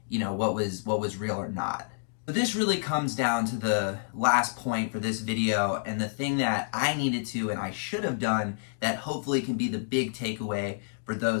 you know, what was real or not. So this really comes down to the last point for this video, and the thing that I needed to and I should have done that hopefully can be the big takeaway for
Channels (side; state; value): right; silent; digital silence